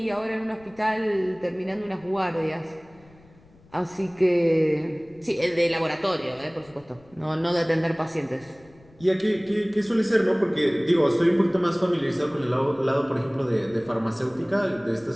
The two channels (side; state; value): left; noise; rumble, 27 dB below the sound